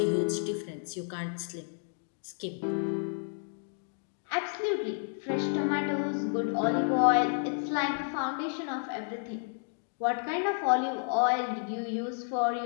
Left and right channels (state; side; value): silent; right; 57 dB below the other